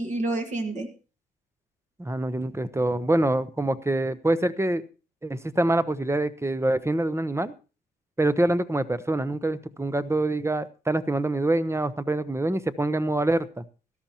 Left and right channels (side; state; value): both; normal; correlation 0.89